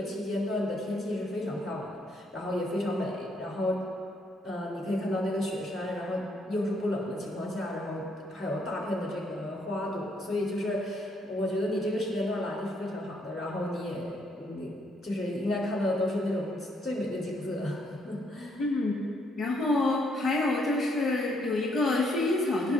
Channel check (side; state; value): both; normal; correlation 0.71